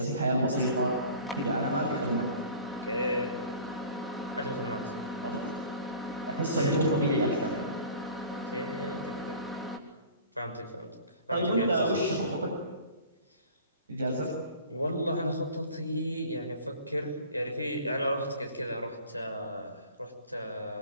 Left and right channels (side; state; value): both; inverted; correlation -0.44